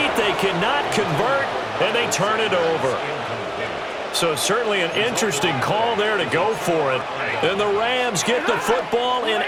They cannot convert, and they turn it over. So certainly an interesting call there to go for it. And the Rams get the football in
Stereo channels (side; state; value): both; identical; correlation 1.00